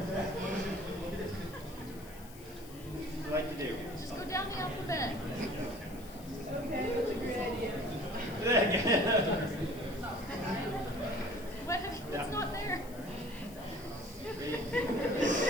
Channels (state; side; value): noise; left; hiss, 19 dB below the sound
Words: What would you like to do? Just go down the alphabet. Okay, that's a great idea. What's not there?